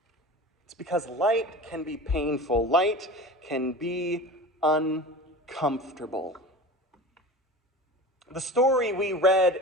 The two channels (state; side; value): normal; both; correlation 0.34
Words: It's because light can be painful. Light can be uncomfortable. The story we read